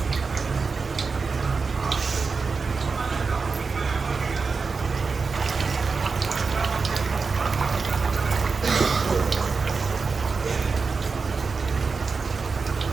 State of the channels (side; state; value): left; quieter; 4.7 dB